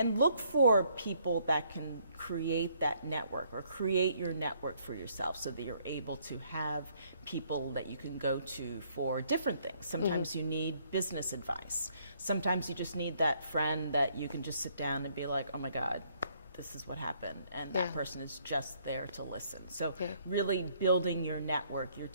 look for people that can create that network or create your network for yourself so that you're able to have people that you can go to for different things. Sometimes you need business advice. Sometimes you just need that friend that you can just sit down and be like, oh my God, this is what happened, and that person is just there to listen. So really building your network, your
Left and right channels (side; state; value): both; inverted; correlation -0.67